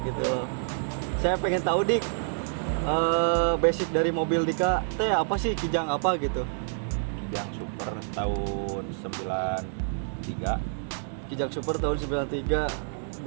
gitu loh. Saya pengen tahu Dik, basic dari mobil Dika teh apa sih, Kijang apa gitu? Kijang Super tahun 93. Kijang Super tahun 93,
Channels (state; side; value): silent; left; digital silence